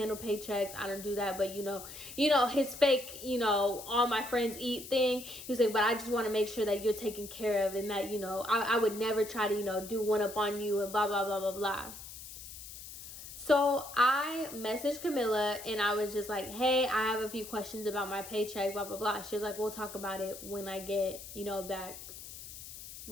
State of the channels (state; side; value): noise; left; hiss, 13 dB below the sound